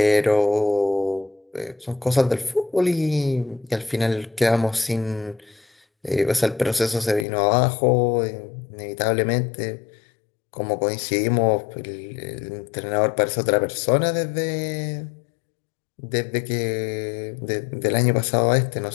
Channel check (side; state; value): right; drops out; at 7.2 s